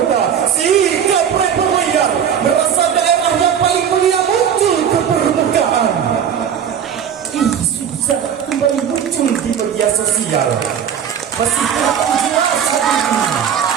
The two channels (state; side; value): quieter; left; 8.3 dB